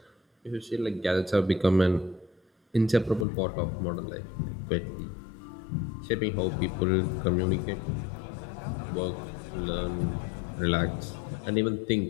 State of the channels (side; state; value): right; drops out; at 3.2 s